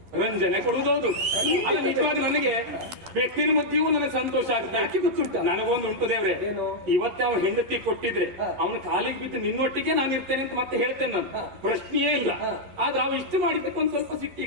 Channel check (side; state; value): left; late; 11 ms